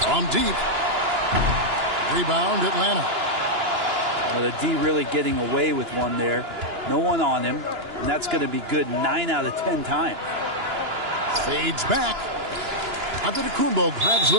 From deep. Rebound, Atlanta. Well, the D really getting away with one there. No one on him. And that's going to be good 9 out of 10 times. Fades back. Antetokounmpo grabs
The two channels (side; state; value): left; late; 2.9 ms